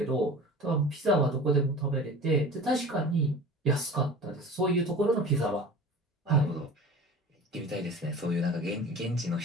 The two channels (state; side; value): normal; both; correlation 0.38